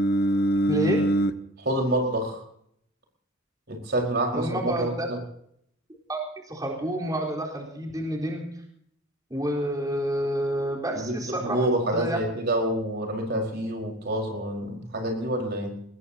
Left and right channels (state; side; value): normal; both; correlation 0.36